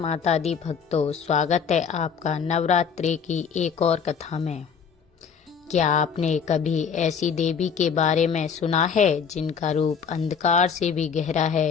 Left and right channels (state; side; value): quieter; right; 6.6 dB